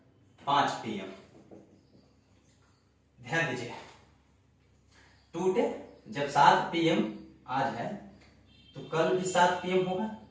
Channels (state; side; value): identical; both; correlation 1.00